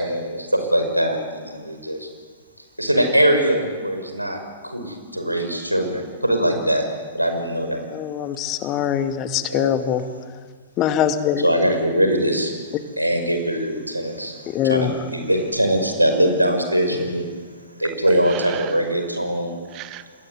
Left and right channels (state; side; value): inverted; both; correlation -0.59